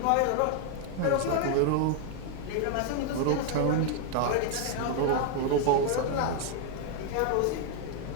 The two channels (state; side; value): different; both; correlation 0.00